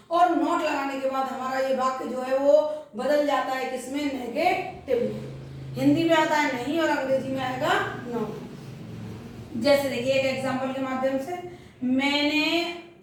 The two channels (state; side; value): identical; both; correlation 1.00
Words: और नॉट लगाने के बाद हमारा ये वाक्य जो है वो बदल जाता है किसमें नेगेटिव। हिंदी में आता है नहीं और अंग्रेजी में आएगा नॉट। जैसे देखिए एक एग्जांपल के माध्यम से, मैंने